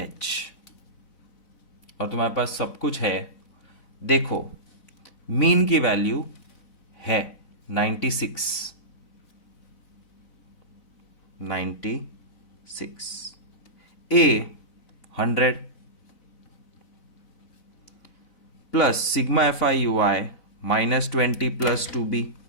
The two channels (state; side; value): late; right; 4.0 ms